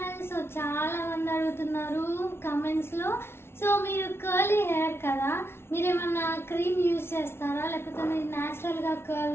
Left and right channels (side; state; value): right; late; 0.12 ms